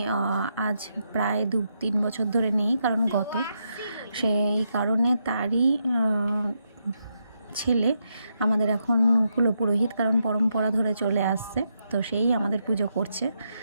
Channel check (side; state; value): both; inverted; correlation -0.82